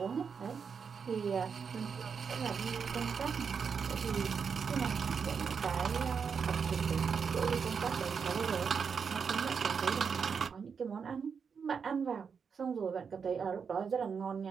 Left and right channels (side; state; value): left; quieter; 6.2 dB